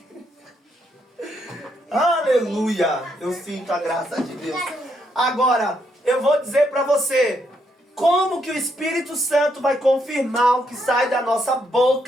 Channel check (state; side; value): normal; both; correlation 0.76